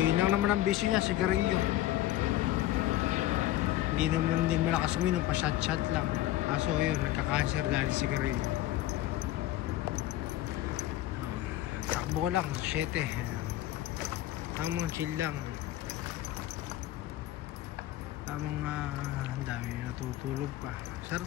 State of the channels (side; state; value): right; quieter; 14.6 dB